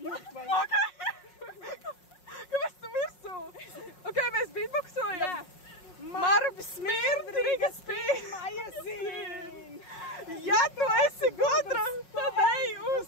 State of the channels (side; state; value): right; late; 5.5 ms